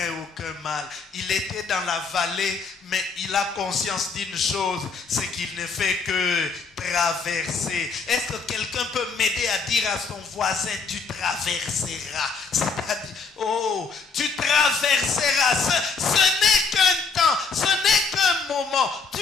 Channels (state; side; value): quieter; right; 4.9 dB